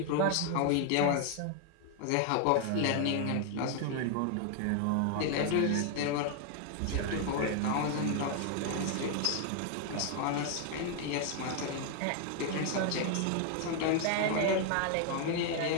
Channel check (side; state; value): both; different; correlation 0.00